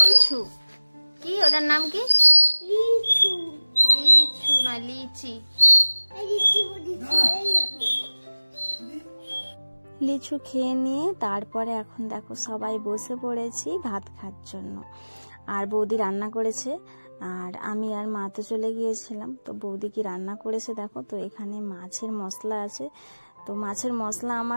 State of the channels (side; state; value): both; inverted; correlation -1.00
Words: কি, ওটার নাম কি? লিচু। লিচু না লিচি। লিচু খেয়ে নিয়ে তারপরে এখন দেখো সবাই বসে পড়েছি ভাত খাওয়ার জন্য। আর বৌদি রান্না করেছে, আর আমি আর মা তো চলে গিয়েছিলাম। তো বৌদি কি রান্না করেছে দেখো। তো এখানে মাছের মশলা আছে। তো মাছের মশলা